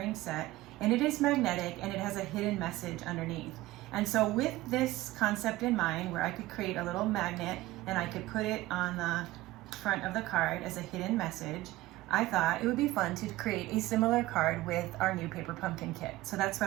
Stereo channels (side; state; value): left; quieter; 17.4 dB